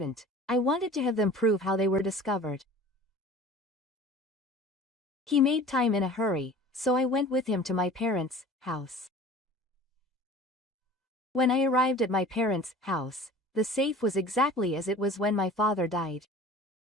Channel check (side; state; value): both; normal; correlation 0.43